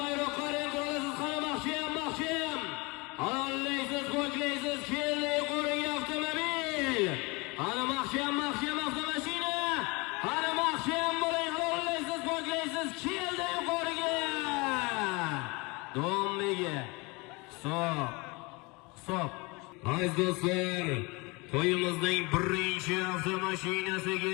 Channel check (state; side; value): quieter; right; 26.7 dB